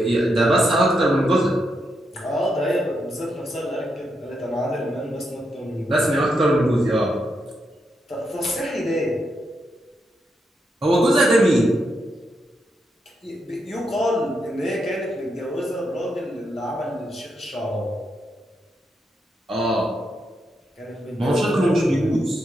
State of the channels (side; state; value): both; normal; correlation 0.82